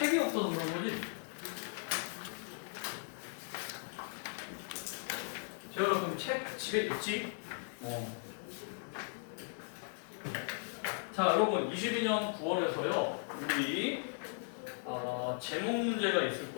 없어서 그런 거지? 제가 그럼 책 집에 있지? 자, 여러분 22년 9월에서요 우리 제목 문제가 있을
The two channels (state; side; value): silent; right; 53 dB below the other